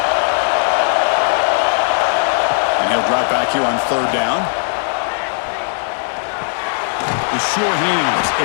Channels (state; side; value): silent; right; 68 dB below the other